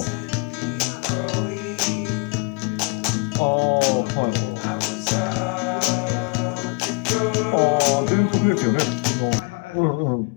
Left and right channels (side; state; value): right; quieter; 34.5 dB